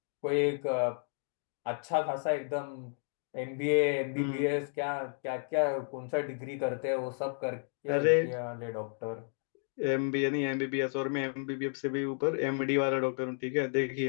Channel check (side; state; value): right; silent; 56 dB below the other